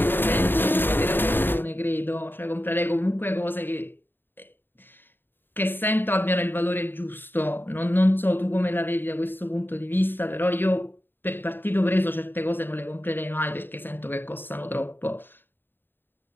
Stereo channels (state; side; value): late; right; 0.096 ms